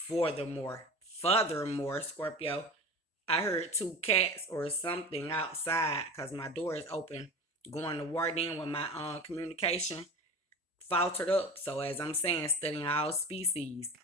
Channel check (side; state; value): both; normal; correlation 0.33